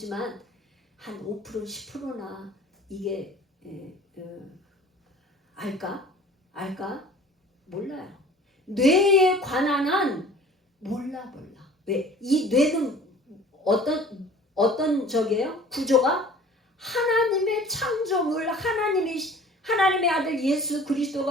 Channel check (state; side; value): normal; both; correlation 0.47